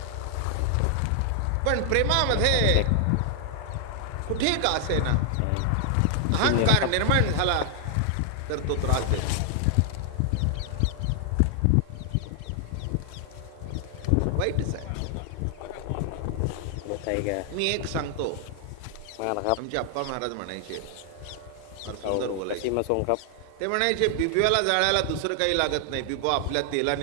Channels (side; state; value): both; different; correlation 0.00